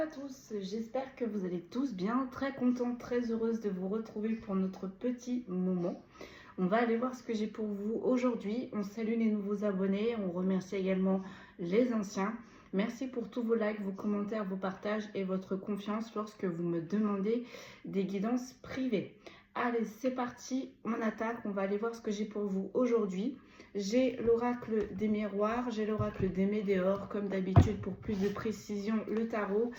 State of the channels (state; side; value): identical; both; correlation 1.00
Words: tous, j'espère que vous allez tous bien, très contente, très heureuse de vous retrouver pour notre petit moment. On va aller voir ce que j'ai pour vous aujourd'hui. On salue les nouveaux abonnés, on remercie également les anciens. Merci pour tous vos likes, vos commentaires, vos partages et votre confiance lorsque vous me demandez des guidances privées. Allez, c'est parti, on attaque, on va aller voir ce que j'ai pour vous aujourd'hui. J'ai l'oracle des miroirs, j'ai l'oracle des météores, comme d'habitude pour plus de précision, le tarot.